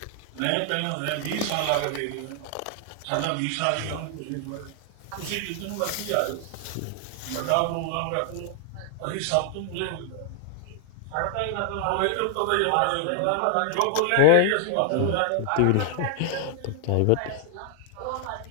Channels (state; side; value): different; both; correlation 0.00